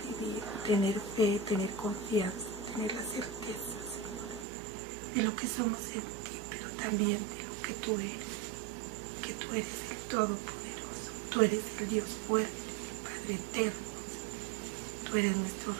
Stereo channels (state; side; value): drops out; left; at 4.5 s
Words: vivir, tener fe, tener confianza, tener la certeza, Señor, de lo que somos en ti, pero también de lo que tú eres el Todopoderoso, tú eres el Dios fuerte, Padre eterno, tú eres nuestro